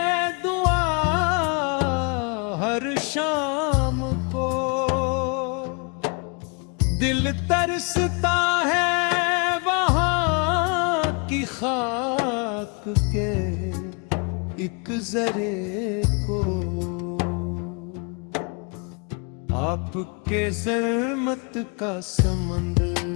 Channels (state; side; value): quieter; right; 33.9 dB